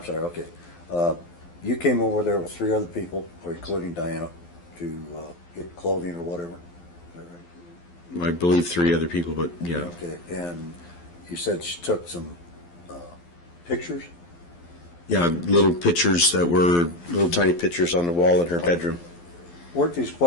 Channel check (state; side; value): late; right; 12 ms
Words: sorry, okay. You came over there with 3 other people, including Diana, to get clothing or whatever. Is that right? I believe 3 other people, but yeah. Okay, and you said she took some pictures? Yeah, little pictures that were little tiny pictures on the wall in her bedroom. Weren't these